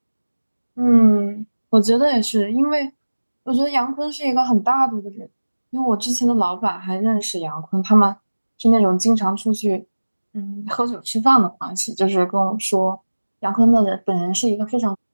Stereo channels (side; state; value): both; inverted; correlation -1.00